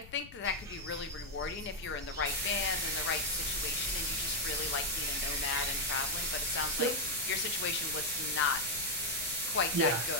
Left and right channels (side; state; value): left; noise; rumble, 19 dB below the sound